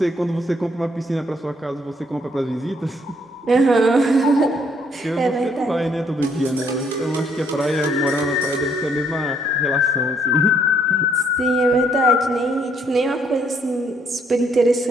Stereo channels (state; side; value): normal; both; correlation 0.68